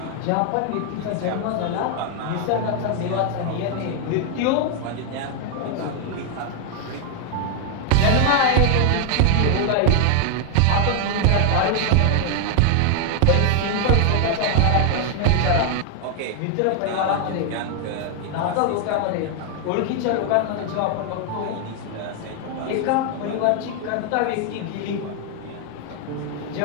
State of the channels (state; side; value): different; both; correlation 0.00